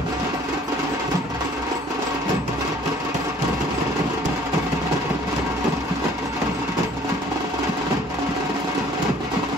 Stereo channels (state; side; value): normal; both; correlation 0.55